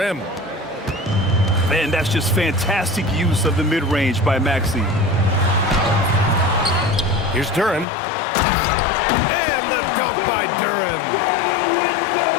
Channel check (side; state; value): right; drops out; at 7.9 s